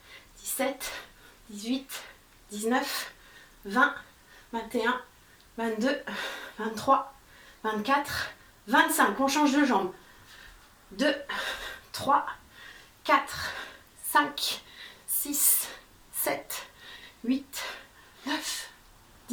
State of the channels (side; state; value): both; identical; correlation 1.00